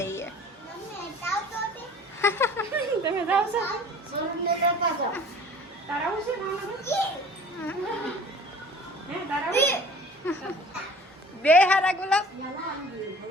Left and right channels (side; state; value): both; normal; correlation 0.46